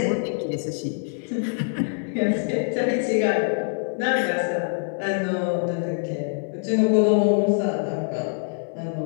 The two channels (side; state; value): right; silent; digital silence